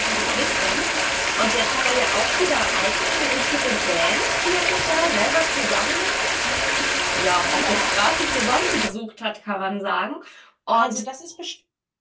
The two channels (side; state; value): both; identical; correlation 1.00